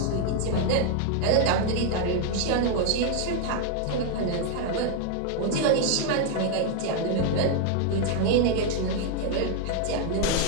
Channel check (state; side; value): different; both; correlation 0.00